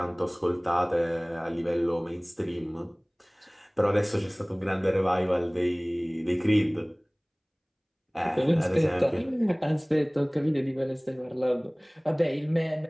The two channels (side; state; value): both; identical; correlation 1.00